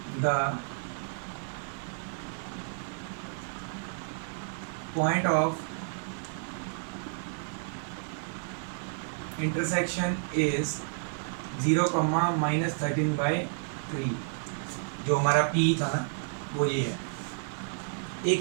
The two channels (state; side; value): silent; left; digital silence